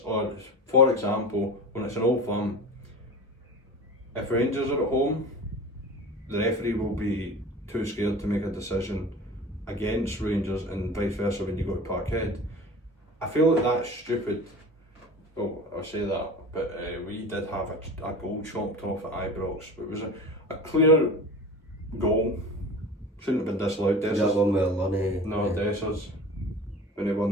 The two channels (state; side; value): normal; both; correlation 0.35